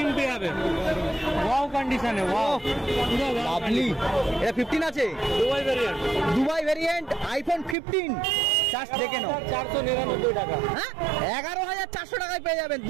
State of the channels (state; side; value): drops out; left; at 7.8 s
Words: পেয়ে যাবে, ওয়াও কন্ডিশনে, ওয়াও পুরো লাভলি। এটা 15 আছে, Dubai variant, Dubai variant iPhone 15। Just দেখে নাও, 499 টাকা। হ্যাঁ 11,400 টাকায় পেয়ে যাবেন